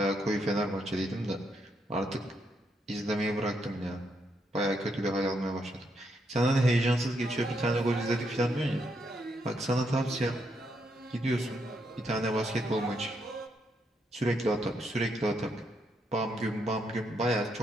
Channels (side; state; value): both; normal; correlation 0.78